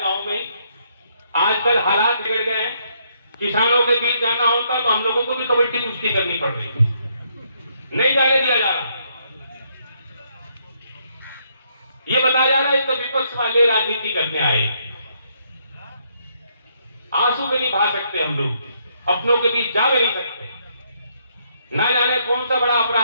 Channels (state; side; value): inverted; both; correlation -0.72